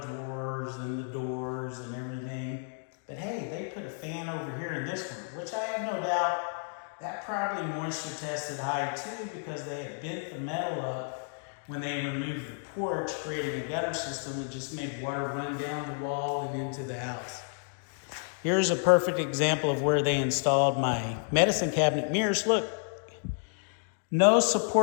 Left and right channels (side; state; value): right; silent; 57 dB below the other